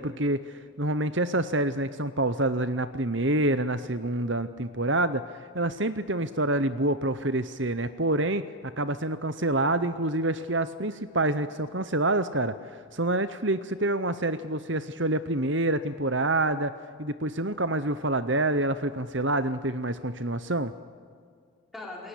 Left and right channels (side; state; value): both; normal; correlation 0.04